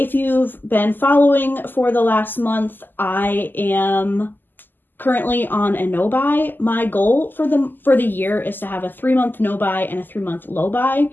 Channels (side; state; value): right; late; 0.090 ms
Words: you've been following for the last month, I am currently on a no buy. My goal for the year is to have a 3-month no buy and a 3-month low buy.